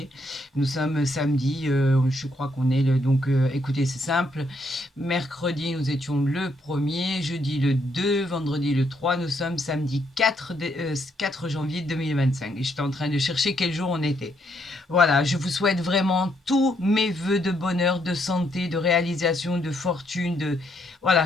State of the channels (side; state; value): both; normal; correlation 0.74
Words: Nous sommes samedi, je crois qu'on est le... Donc écoutez, c'est simple. Mercredi, nous étions le 1er, jeudi le 2, vendredi le 3. Nous sommes samedi 4 janvier 2025. Et j'étais en train de chercher quel jour on était. Voilà, je vous souhaite vraiment tous mes voeux de bonheur, de santé, de réalisation, de fortune, de...